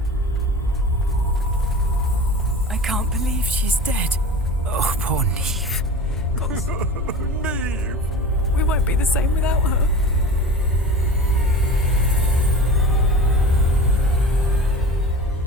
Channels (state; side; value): normal; both; correlation 0.35